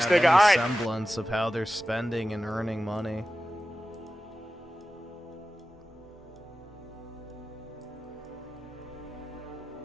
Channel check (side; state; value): both; normal; correlation 0.94